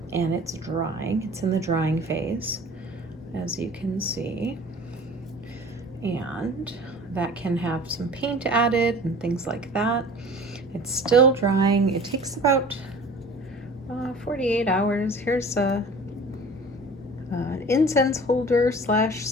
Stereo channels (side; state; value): both; normal; correlation 0.44